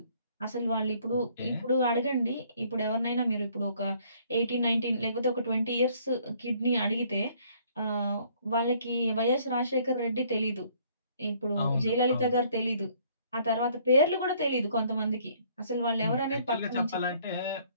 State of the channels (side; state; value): both; inverted; correlation -0.62